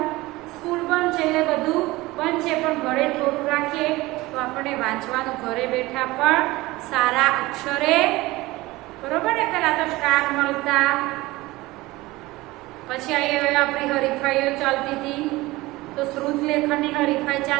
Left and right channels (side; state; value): left; quieter; 20.0 dB